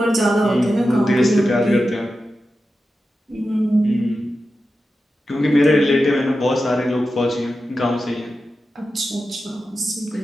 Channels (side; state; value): both; normal; correlation 0.91